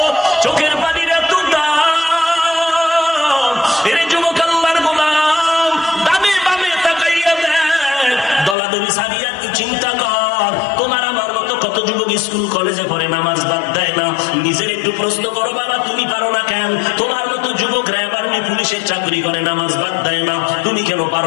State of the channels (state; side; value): drops out; right; at 8.6 s